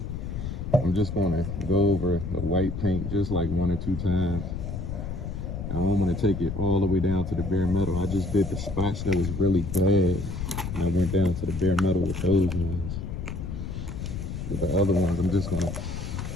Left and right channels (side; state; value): left; noise; rumble, 5 dB below the sound